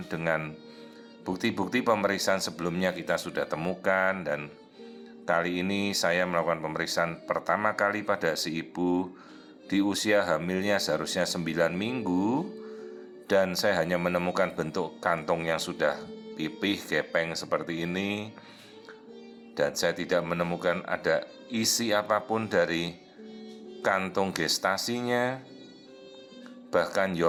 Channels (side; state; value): both; identical; correlation 1.00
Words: dengan bukti-bukti pemeriksaan sebelumnya kita sudah temukan, dan kali ini saya melakukan pemeriksaan pertama kali pada si ibu di usia hamilnya seharusnya 9 minggu, dan saya hanya menemukan bentuk kantong yang sudah pipih, gepeng seperti ini, dan saya tidak menemukan ada isi apapun dari kantung gestasinya. Bahkan